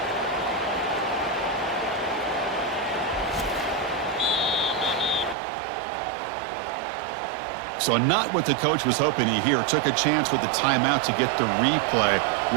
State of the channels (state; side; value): drops out; left; at 5.4 s